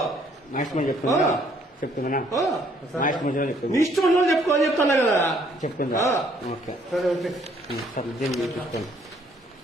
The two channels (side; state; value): both; normal; correlation 0.65